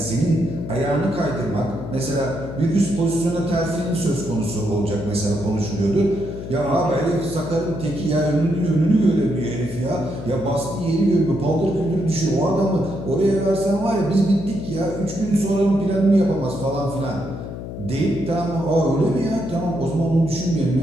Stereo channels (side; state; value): left; noise; hum, 9 dB below the sound